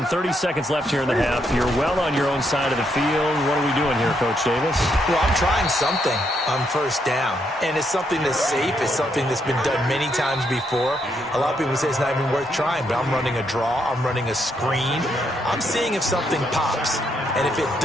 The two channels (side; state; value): both; normal; correlation 0.77